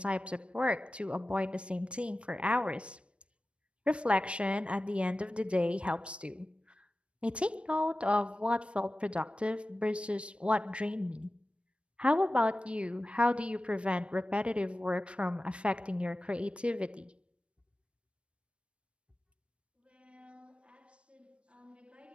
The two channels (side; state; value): left; late; 0.059 ms